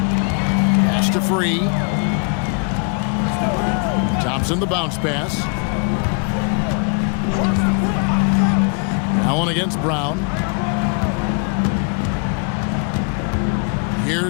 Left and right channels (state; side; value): quieter; right; 38.4 dB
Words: to Free. Thompson the bounce pass. Allen against Brown.